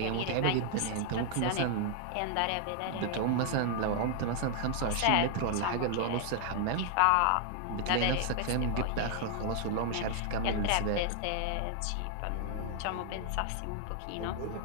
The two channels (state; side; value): different; both; correlation 0.00